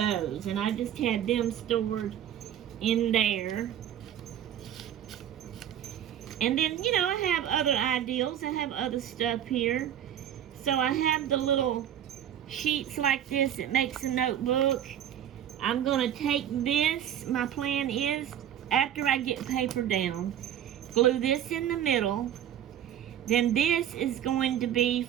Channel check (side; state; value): left; quieter; 10.3 dB